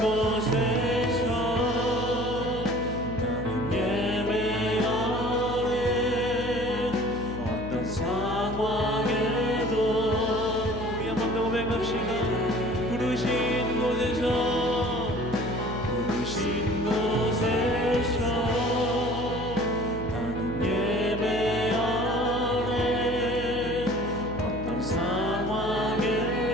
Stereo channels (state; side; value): noise; left; hum, 10 dB below the sound